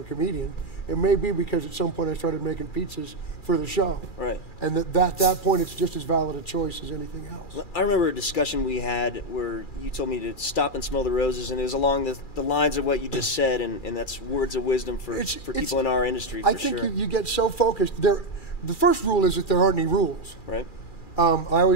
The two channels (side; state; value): right; late; 2.4 ms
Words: a comedian. It may be because at some point I started making pizzas for the show. Right. And at that point, it's just as valid a choice as anything else. I remember a discussion we had where you told me to stop and smell the roses, and it was along the lines of what you just said, and that's words of wisdom for people in our industry, I think you get so focused. The first rule is that there aren't any rules. Right. I